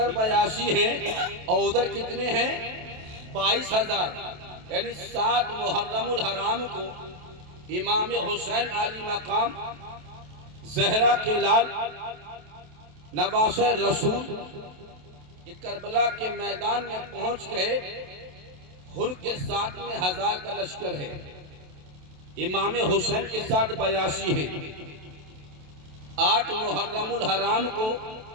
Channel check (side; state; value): left; late; 27 ms